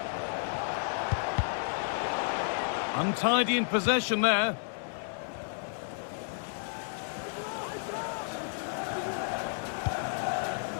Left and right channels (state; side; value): silent; right; 57 dB below the other